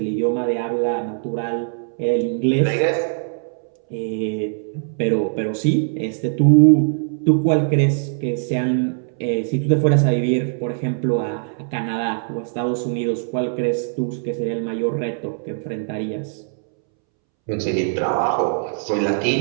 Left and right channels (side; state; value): left; silent; 65 dB below the other